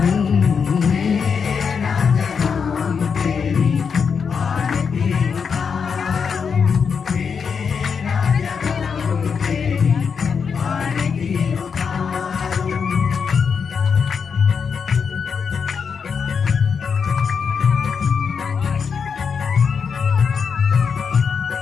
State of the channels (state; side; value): quieter; right; 6.2 dB